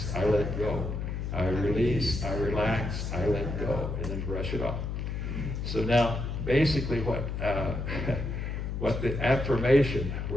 I let go. I release, I relax, I let go. And then brush it off. So now, basically what the affirmation,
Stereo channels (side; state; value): left; noise; hum, 3 dB below the sound